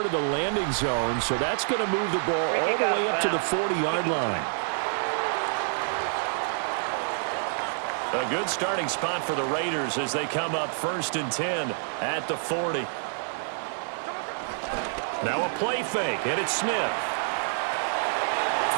of the landing zone, so that's going to move the ball all the way up to the 40-yard line. A good starting spot for the Raiders as they come up 1st and 10 at the 40. Now a play fake, and it's Smith.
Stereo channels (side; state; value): left; silent; digital silence